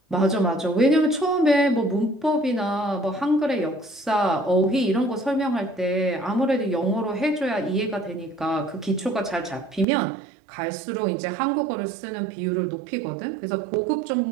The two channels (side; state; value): left; drops out; at 9.9 s